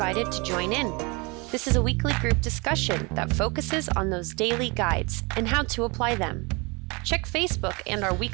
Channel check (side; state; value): left; quieter; 28.7 dB